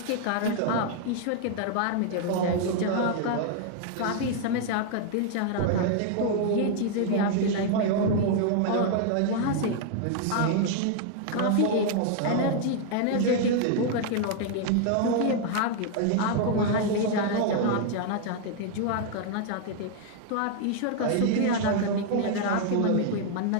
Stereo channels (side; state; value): both; different; correlation 0.00